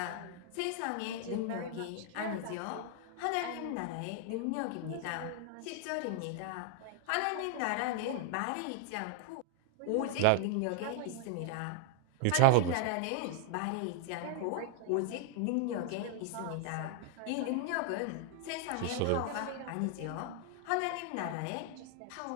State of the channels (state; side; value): different; both; correlation 0.00